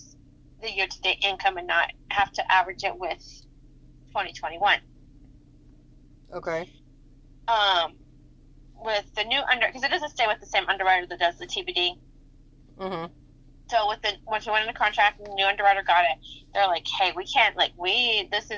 the year-to-date income and not have to average it with 2021. Okay. With the new because it doesn't stay with the same underwriter that does the TBD. Mm-hmm. So once we went into contract and the new underwriter got it, they're like, hey, we can't, this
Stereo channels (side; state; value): both; identical; correlation 1.00